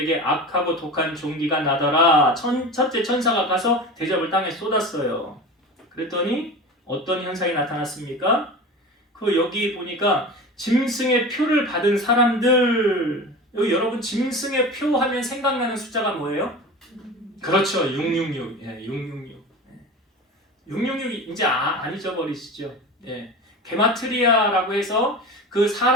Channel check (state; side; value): normal; both; correlation 0.32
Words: 악하고 독한 종기가 나더라. 첫째 천사가 가서 대접을 땅에 쏟았어요. 그랬더니 어떤 현상이 나타났습니까? 여기 보니까 짐승의 표를 받은 사람들. 여기 여러분, 짐승의 표 하면 생각나는 숫자가 뭐예요? 그렇죠. 666. 예, 666. 666이 이제 안 잊어버리시죠? 예. 게마트리아라고 해서 그